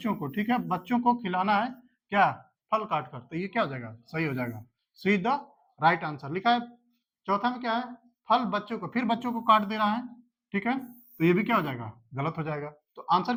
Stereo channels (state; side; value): identical; both; correlation 1.00